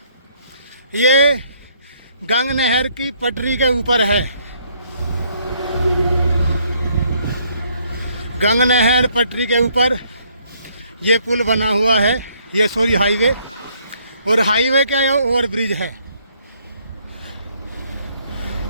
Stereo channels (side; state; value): both; inverted; correlation -0.67